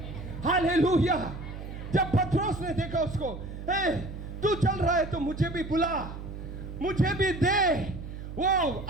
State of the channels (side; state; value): right; noise; hum, 10 dB below the sound